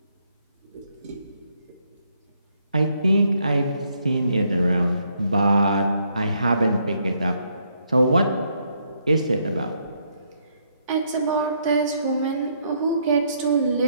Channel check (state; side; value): inverted; both; correlation -0.73